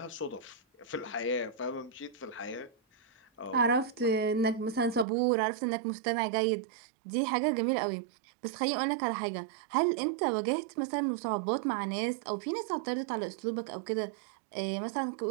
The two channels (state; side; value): drops out; left; at 5.1 s